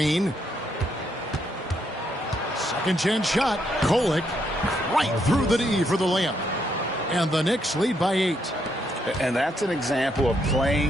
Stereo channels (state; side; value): normal; both; correlation 0.75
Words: Second chance shot. Kolek right through the D for the layup. And the Knicks lead by 8. And that's an example of